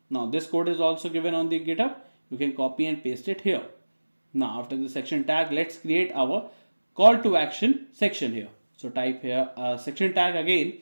now this code is also given on the GitHub. You can copy and paste it here. Now after the section tag, let's create our call to action section here. So type here a section tag again,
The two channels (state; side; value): inverted; both; correlation -1.00